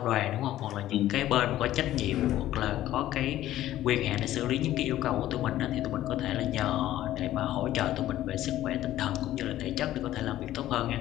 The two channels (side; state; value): right; quieter; 13.8 dB